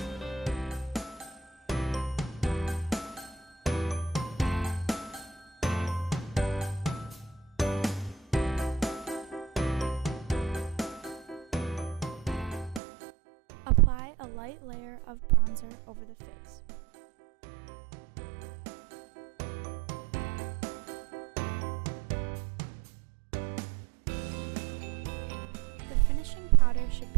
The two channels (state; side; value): drops out; left; at 12.8 s